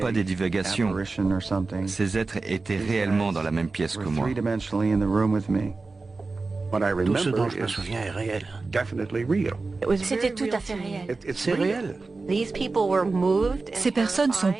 des divagations. Ces êtres étaient réellement dans la même pièce que moi. Tout ce dont je me souviens est réel. C'était tout à fait réel. C'est réel. Ces personnes sont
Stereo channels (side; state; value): left; quieter; 3.8 dB